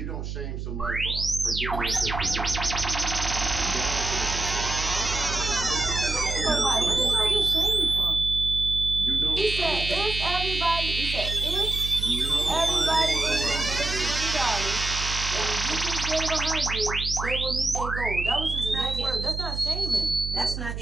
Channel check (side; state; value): right; noise; hum, 5 dB below the sound